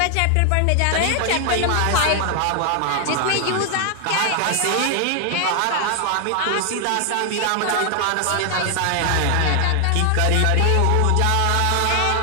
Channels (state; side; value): different; both; correlation 0.00